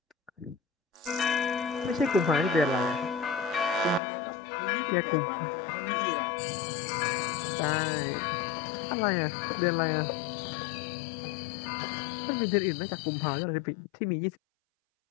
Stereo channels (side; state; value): right; drops out; at 4.0 s